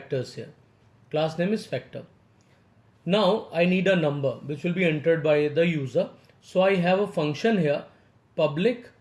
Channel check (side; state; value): both; identical; correlation 1.00